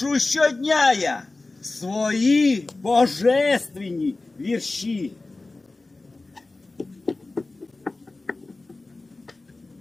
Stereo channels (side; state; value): right; quieter; 3.3 dB